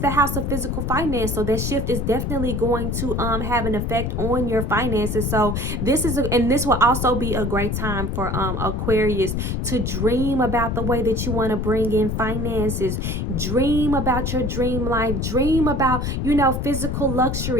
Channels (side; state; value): left; noise; rumble, 1 dB below the sound